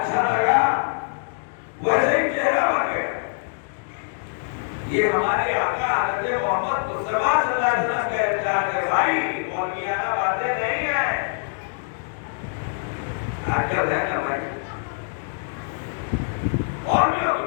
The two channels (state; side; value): silent; right; digital silence